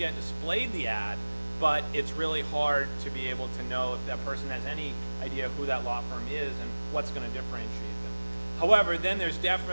displayed the ad, but it's really hard to be able to know if that person has any idea who that law firm is and what's going to differentiate them. However, then there's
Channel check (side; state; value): both; inverted; correlation -1.00